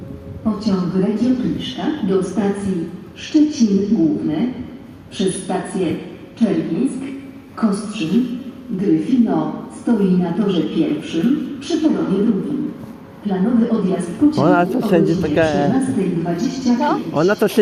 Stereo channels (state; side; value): identical; both; correlation 1.00